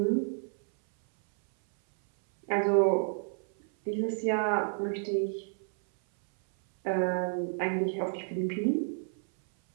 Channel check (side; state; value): left; silent; 58 dB below the other